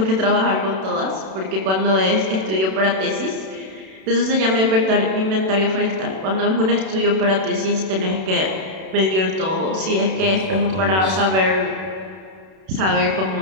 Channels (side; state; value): left; late; 32 ms